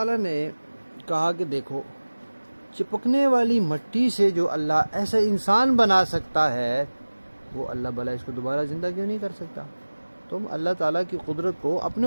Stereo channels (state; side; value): inverted; both; correlation -1.00